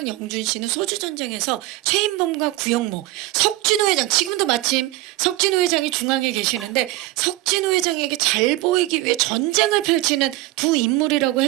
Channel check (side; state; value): left; quieter; 18.2 dB